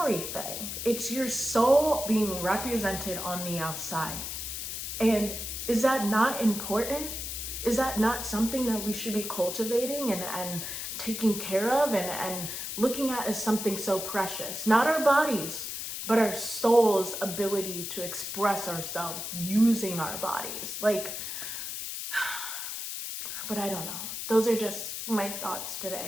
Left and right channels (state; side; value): noise; left; hiss, 5 dB below the sound